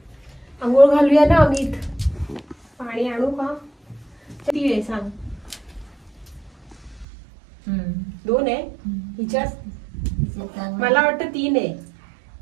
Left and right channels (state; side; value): drops out; left; at 7.1 s